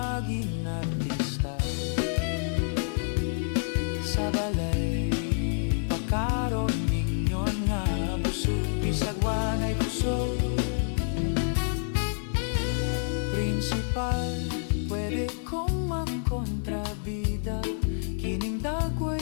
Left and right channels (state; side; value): silent; right; digital silence